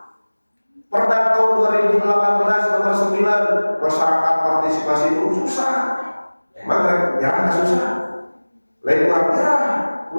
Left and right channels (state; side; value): inverted; both; correlation -1.00